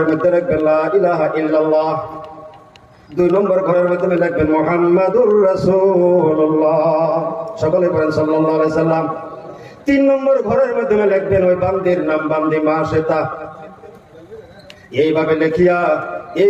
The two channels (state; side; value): identical; both; correlation 1.00